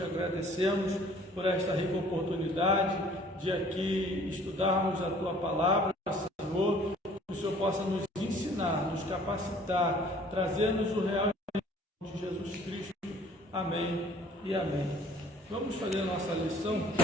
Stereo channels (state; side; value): normal; both; correlation 0.54